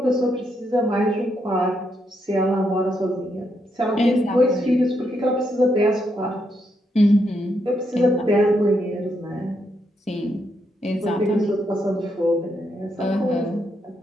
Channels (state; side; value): normal; both; correlation 0.79